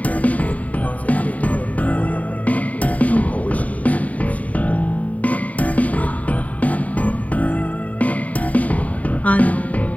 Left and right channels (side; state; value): right; late; 0.070 ms